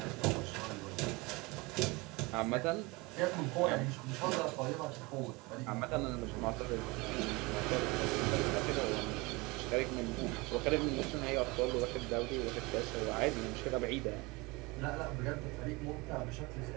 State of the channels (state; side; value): quieter; left; 24.5 dB